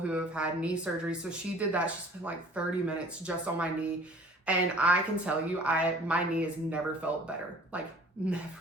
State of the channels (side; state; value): both; normal; correlation 0.50